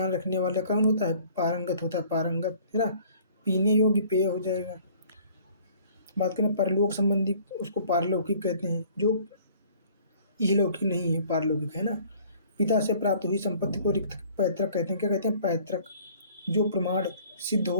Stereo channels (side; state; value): both; inverted; correlation -0.54